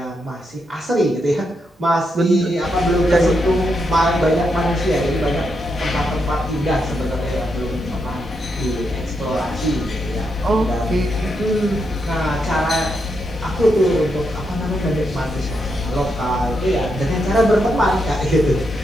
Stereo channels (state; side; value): normal; both; correlation 0.82